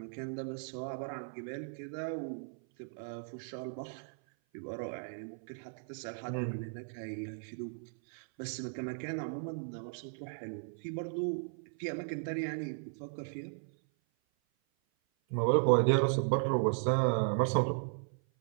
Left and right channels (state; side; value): silent; left; 54 dB below the other